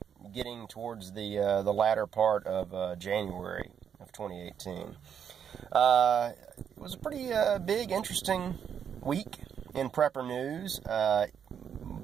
getting towards the latter part of January of 2018. It was a pretty big, interesting week in Prepper News.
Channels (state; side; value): quieter; left; 8.1 dB